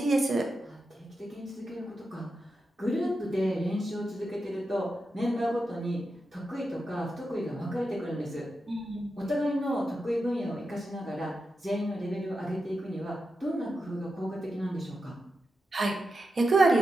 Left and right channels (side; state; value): both; normal; correlation 0.89